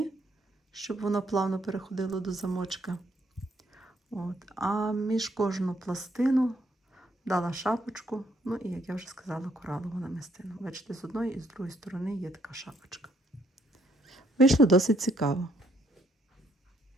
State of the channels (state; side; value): normal; both; correlation 0.70